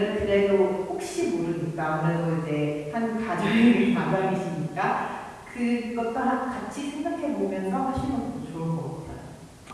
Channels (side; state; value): both; identical; correlation 1.00